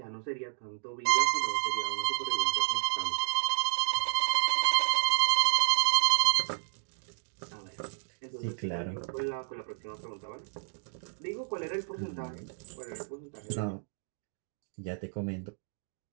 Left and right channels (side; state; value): left; silent; digital silence